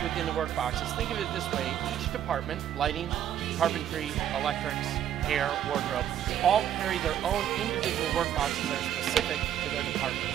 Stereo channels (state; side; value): quieter; left; 10.4 dB